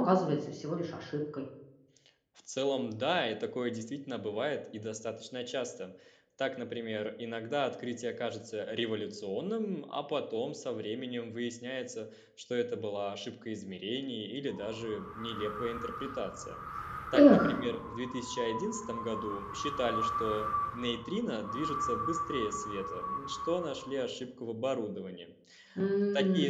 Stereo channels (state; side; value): identical; both; correlation 1.00